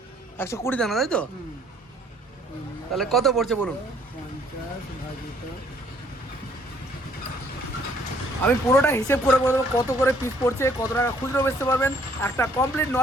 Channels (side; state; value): both; normal; correlation 0.62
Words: 120 দানা, তাই তো? তাহলে কত পড়ছে বলুন? 50 ভাজিত। আমি পুরোটা হিসেব করে বলবো কত করে পিস পড়ছে, কত টাকা খুচরো বেচতে পারবেন। একটা কমপ্লিট